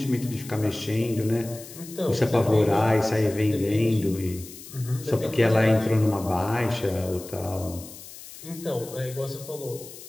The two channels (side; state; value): left; noise; hiss, 16 dB below the sound